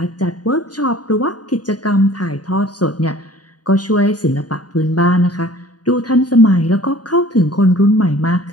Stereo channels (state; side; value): late; right; 0.69 ms